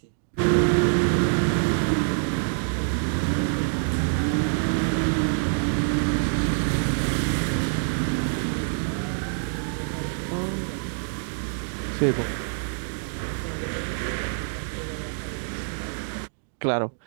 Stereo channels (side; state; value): left; silent; digital silence